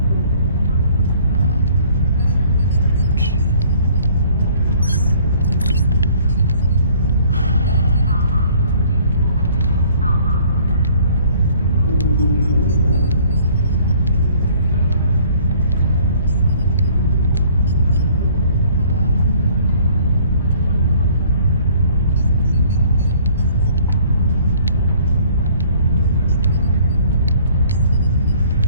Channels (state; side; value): inverted; both; correlation -0.56